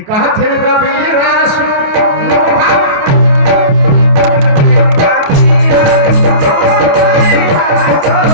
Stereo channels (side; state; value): left; late; 28 ms